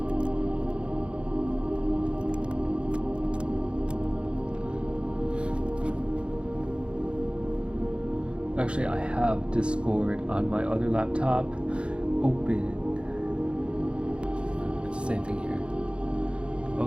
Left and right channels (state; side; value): late; left; 0.057 ms